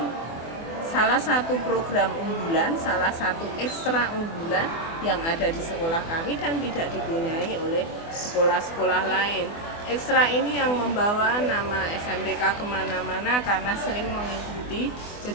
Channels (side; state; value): right; late; 24 ms